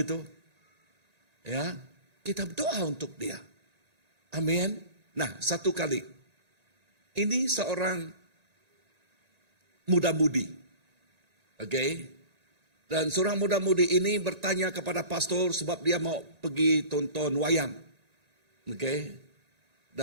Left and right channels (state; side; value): late; left; 1.9 ms